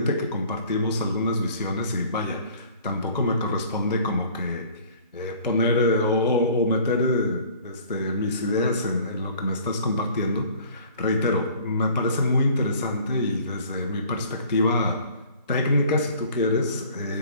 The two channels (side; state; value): both; inverted; correlation -0.50